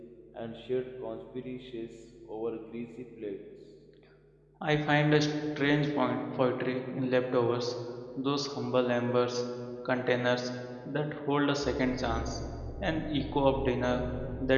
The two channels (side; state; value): both; identical; correlation 1.00